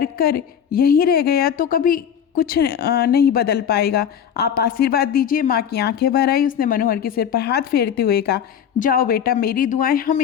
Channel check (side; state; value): right; quieter; 8.6 dB